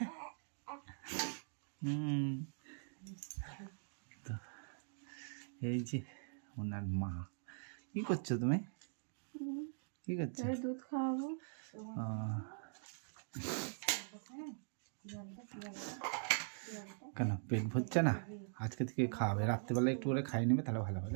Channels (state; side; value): silent; left; digital silence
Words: তো এই যে ওনার মা। কি করছো তুমি? কি করছো? দুধ খাওয়াবো। কেন পেট ভরছে না? আজকে থেকে খাওয়াবে, রাত্রেবেলা একটু করে খাইয়ে নেবে, তাহলে ভালো হবে,